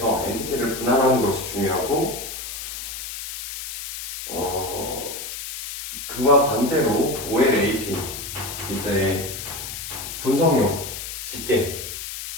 엔티티를 분할하는 것이 중요하고, 그와 반대로 OLAP, 이제 분석용 집계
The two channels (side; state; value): left; noise; hiss, 8 dB below the sound